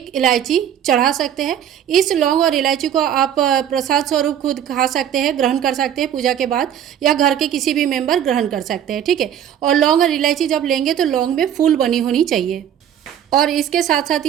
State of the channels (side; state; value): left; quieter; 9.8 dB